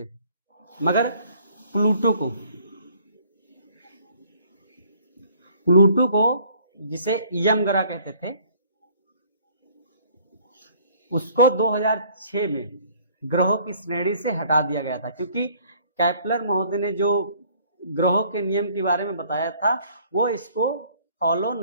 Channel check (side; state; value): both; inverted; correlation -0.59